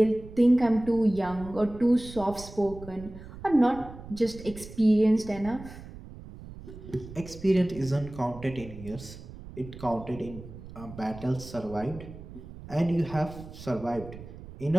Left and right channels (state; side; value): noise; right; rumble, 15 dB below the sound